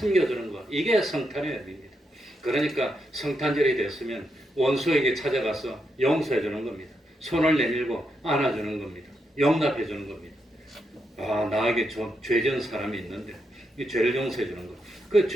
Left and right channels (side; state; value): both; normal; correlation 0.82